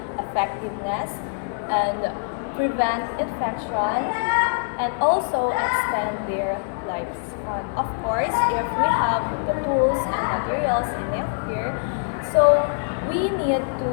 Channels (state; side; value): silent; right; 63 dB below the other